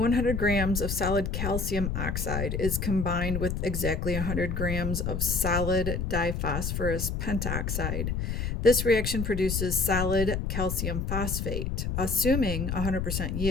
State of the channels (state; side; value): noise; left; rumble, 2 dB below the sound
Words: grams of solid calcium oxide is combined with exactly 100 grams of solid diphosphorus pentoxide. This reaction produces solid calcium phosphate. Assuming 100%